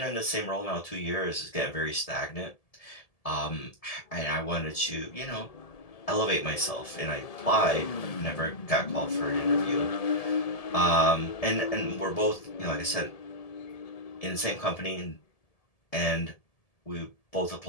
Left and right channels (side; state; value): right; late; 1.7 ms